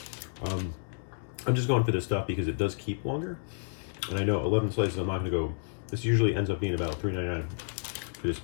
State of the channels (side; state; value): right; silent; digital silence